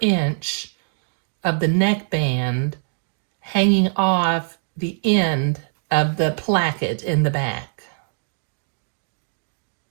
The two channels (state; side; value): silent; left; digital silence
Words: inch of the neckband hanging off the end of the placket in the back.